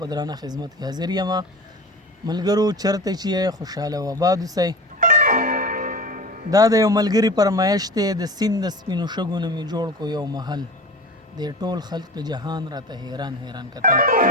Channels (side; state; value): both; normal; correlation 0.33